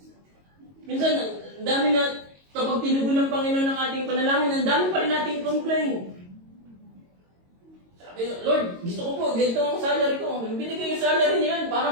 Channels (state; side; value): late; left; 22 ms